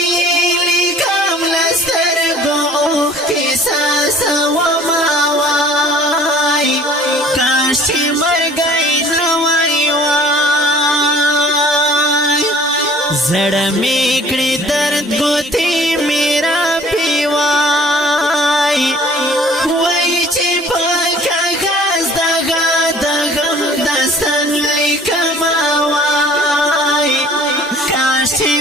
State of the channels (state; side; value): normal; both; correlation 0.51